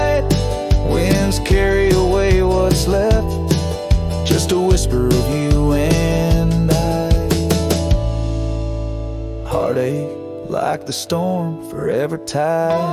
winds carry away what's left, just a whisper of you and I. Heartache like the storm forever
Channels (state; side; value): identical; both; correlation 1.00